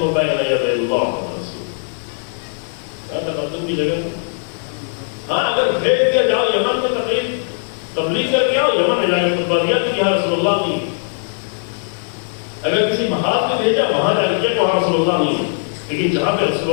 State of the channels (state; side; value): silent; right; digital silence